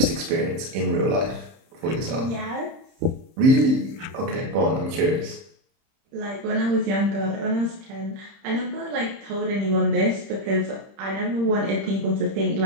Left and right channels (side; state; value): left; late; 30 ms